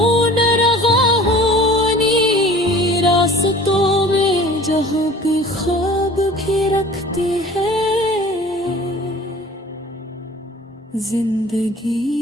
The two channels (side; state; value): both; normal; correlation 0.46